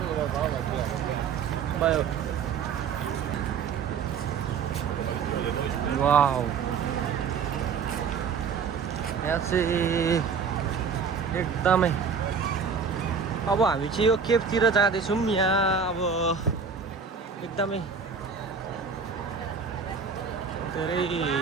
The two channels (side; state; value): left; quieter; 6.0 dB